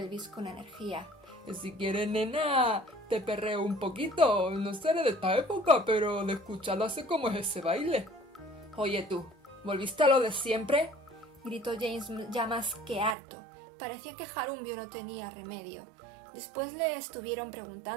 con energía. Si quieres, nena, te perreo un poquito. No seré de esta época, pero de escucharlo sé cómo es ese baile. Oye tú, ¿volviste a lo de siempre? Gritó James, ya más que harto. Parecía que Harumiu no tenía remedio. Después le estuvieron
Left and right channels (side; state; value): left; drops out; at 13.2 s